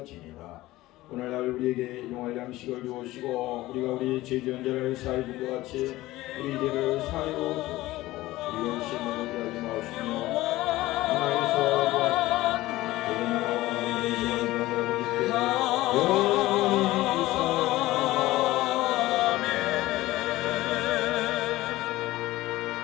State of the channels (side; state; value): right; quieter; 17.4 dB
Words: 오늘날 우리에게 일용할 양식을 주옵시고 우리가 우리 죄지은 자를 사하여 준 것 같이 우리 죄를 사하여 주옵시고 우리가 시험에 들게 하지 마시며 하나님께서